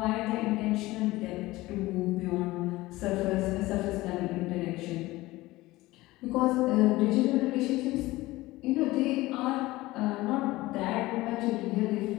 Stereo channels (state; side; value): quieter; right; 18.9 dB